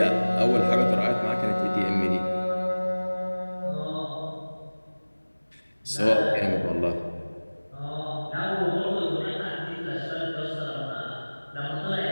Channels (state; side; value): inverted; both; correlation -1.00